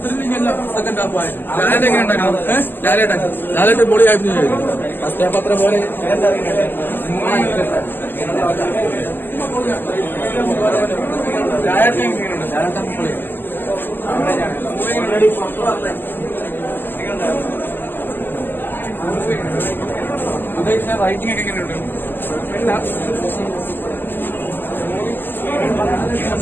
സെക്കൻഡ് ഹാഫ് ആയിരുന്നു. ലാലേട്ടൻ എങ്ങനെ ഉണ്ടായിരുന്നു? ലാലേട്ടൻ പൊളി ആയിരുന്നു. ഫസ്റ്റ് ഹാഫ് അത്ര പോലെ ലാലേട്ടൻ എങ്ങനെയുണ്ട്? ലാലേട്ടൻ പൊളി. ഉദ്ദേശിച്ച റൈറ്റിംഗ് ഒക്കെ എങ്ങനെയുണ്ട്?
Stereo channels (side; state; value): right; late; 0.094 ms